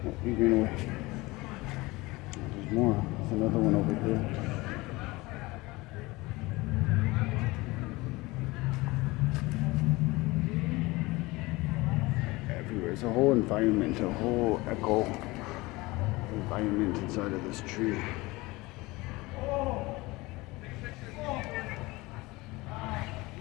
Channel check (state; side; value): quieter; right; 21.8 dB